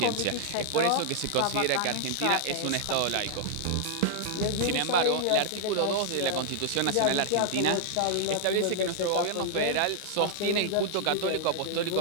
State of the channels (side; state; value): both; different; correlation -0.01